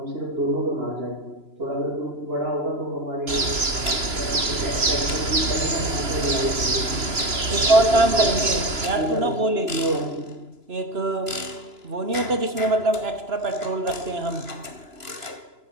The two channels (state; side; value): late; left; 2.9 ms